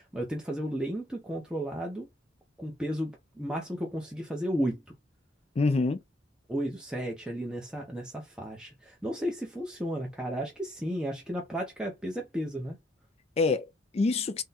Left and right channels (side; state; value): both; normal; correlation 0.72